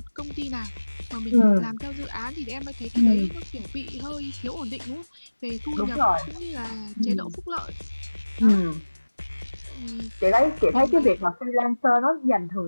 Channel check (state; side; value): inverted; both; correlation -1.00